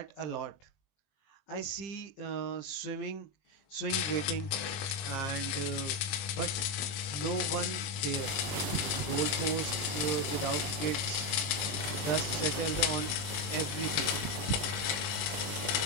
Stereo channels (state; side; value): late; right; 21 ms